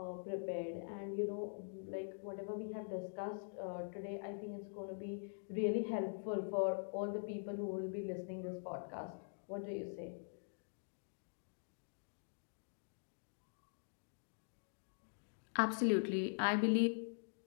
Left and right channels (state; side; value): silent; right; digital silence